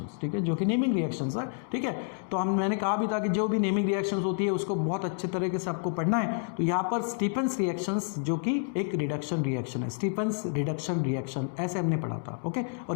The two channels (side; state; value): right; silent; digital silence